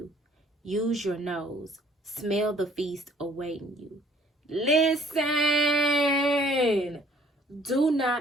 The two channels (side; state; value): both; normal; correlation 0.59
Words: Use your nose. Smell the feast awaiting you. Listen! Do